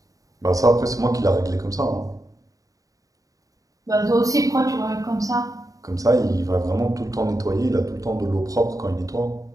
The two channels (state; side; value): late; left; 0.17 ms